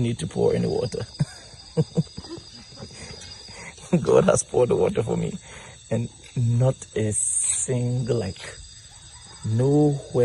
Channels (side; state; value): both; identical; correlation 1.00